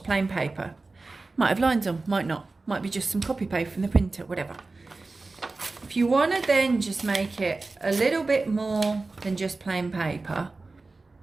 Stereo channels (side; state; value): left; quieter; 3.5 dB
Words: plain paper. Might have lines on, might not. Might be just some copy paste from the printer, whatever. If you want to then just make it a little bit more than just plain paper,